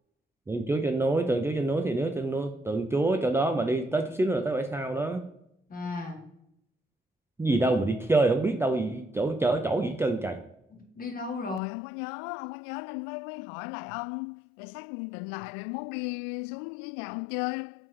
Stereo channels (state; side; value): drops out; right; at 11.6 s